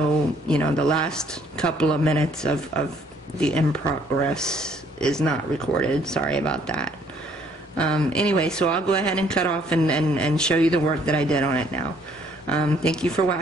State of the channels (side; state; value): both; normal; correlation 0.64